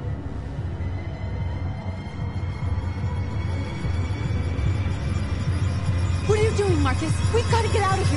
What are you doing, Marcus? We've got to get out of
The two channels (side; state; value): both; identical; correlation 1.00